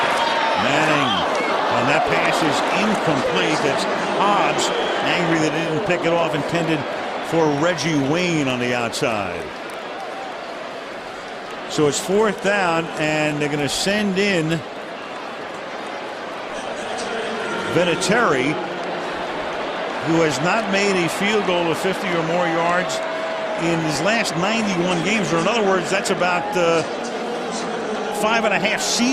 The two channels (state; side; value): identical; both; correlation 1.00